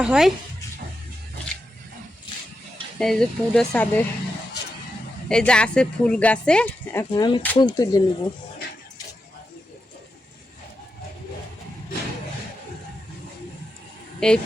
হয়। এই যে পুরো ছাদে এই যে আছে ফুল গাছে, এখন আমি ফুল তুলে নেব। এই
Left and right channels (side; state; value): both; normal; correlation 0.87